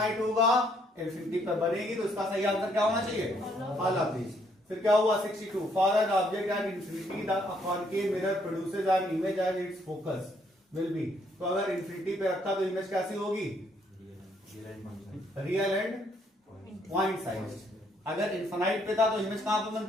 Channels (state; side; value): normal; both; correlation 0.69